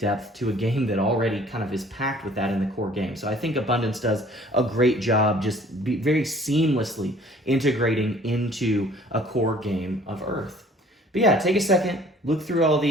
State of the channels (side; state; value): both; normal; correlation 0.53